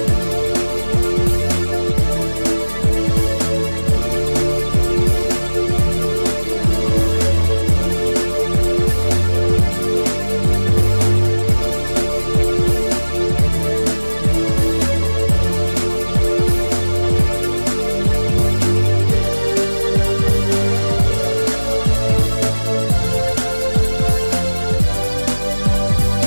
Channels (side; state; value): both; inverted; correlation -1.00